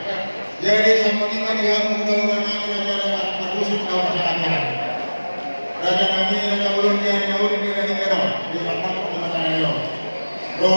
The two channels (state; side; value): inverted; both; correlation -1.00